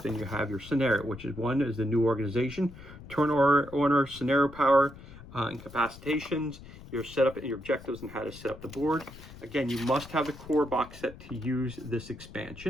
you have your scenario, which is one is the new organization, turn order, scenario power, incapacitations, your setup and your objectives, and how to set up the board. Again, you must have the core box set to use this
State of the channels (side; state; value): left; noise; rumble, 17 dB below the sound